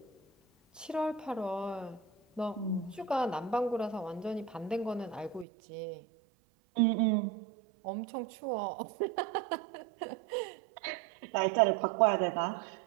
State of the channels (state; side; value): drops out; left; at 5.5 s